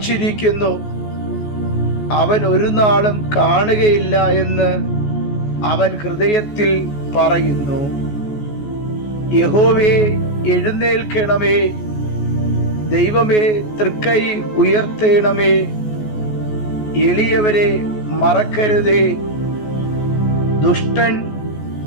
അവൻ ഒരു നാളും കാണുകയില്ല എന്ന് അവൻ ഹൃദയത്തിൽ പറയുന്നു. യഹോവേ, എഴുന്നേൽക്കണമേ. ദൈവമേ, തൃക്കൈ ഉയർത്തേണമേ. എളിയവരെ മറക്കരുതേ. ദുഷ്ടൻ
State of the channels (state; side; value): late; right; 14 ms